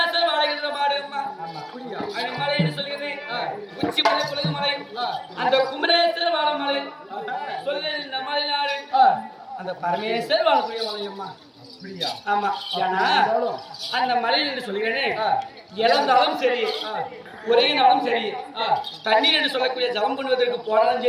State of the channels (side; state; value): both; identical; correlation 1.00